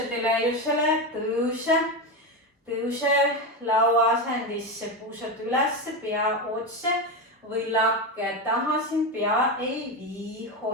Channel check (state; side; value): normal; both; correlation 0.15